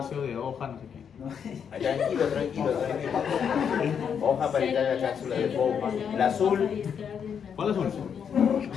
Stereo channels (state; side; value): quieter; right; 7.5 dB